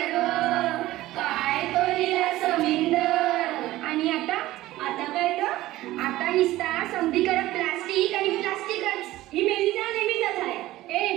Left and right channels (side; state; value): left; quieter; 16.5 dB